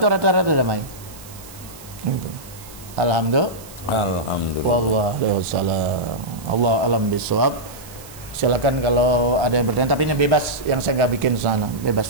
rata-rata damai. Gitu. Alhamdulillah. Waalaikumsalam. Allah alam bisawab. Silakan kalau ada yang bertanya, tapi ini bebas, yang saya nggak bikin sana,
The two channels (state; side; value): noise; right; hiss, 19 dB below the sound